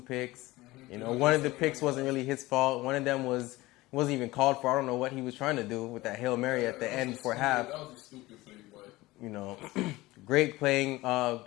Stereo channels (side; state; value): right; quieter; 19.5 dB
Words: picks. One of the picks wasn't really his fault. One of them wasn't even called for. I don't know what he was trying to do with that Hail Mary at the end for half. That was a stupid play, but... Great playing.